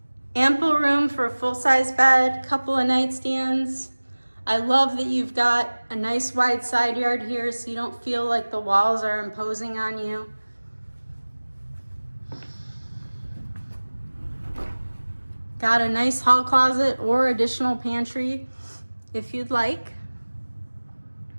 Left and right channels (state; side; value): inverted; both; correlation -1.00